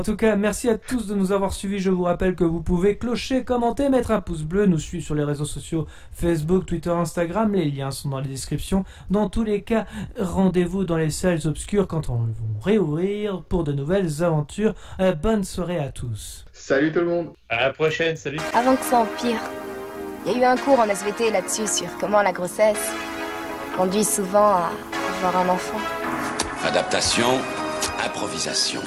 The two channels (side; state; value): both; identical; correlation 1.00